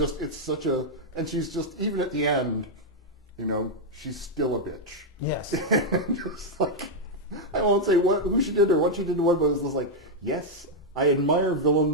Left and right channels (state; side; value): normal; both; correlation -0.01